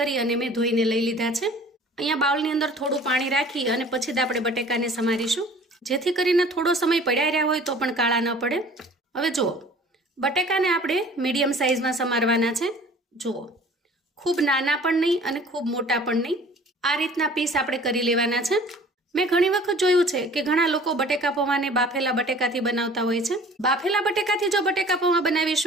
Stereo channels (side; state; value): both; normal; correlation 0.48